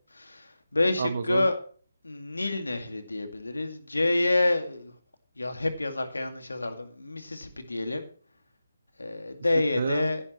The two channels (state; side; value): inverted; both; correlation -0.94